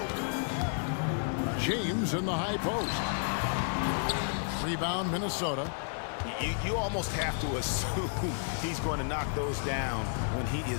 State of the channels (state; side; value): silent; right; digital silence